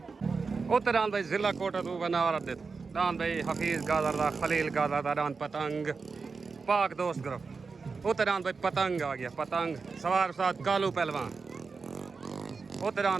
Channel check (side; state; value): left; quieter; 4.7 dB